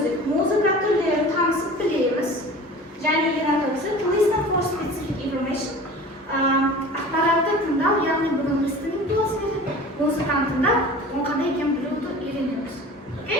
музыка түрлерін танысып білеміз. Және ең ақырғысы, to listen for specific information. Ақпаратты тыңдау, яғни бүгін listening болсын еді, музыканы тыңдап, оның қандай екенін білуді үйренеміз.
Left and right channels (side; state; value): both; normal; correlation 0.40